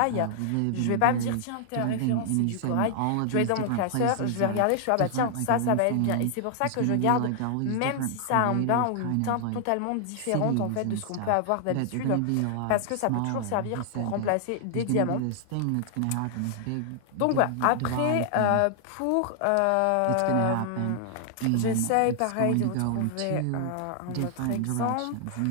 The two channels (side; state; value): both; different; correlation 0.00